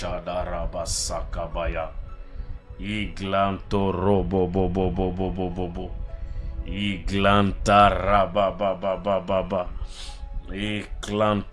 Iglanto robo bo bo bo bo bo bo bo. Iglanta rabababababa.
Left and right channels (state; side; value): identical; both; correlation 1.00